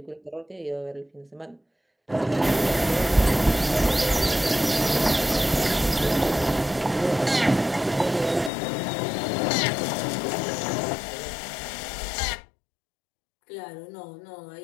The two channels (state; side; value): drops out; right; at 8.5 s